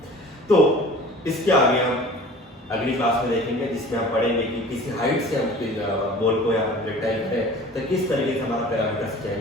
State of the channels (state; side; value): normal; both; correlation 0.43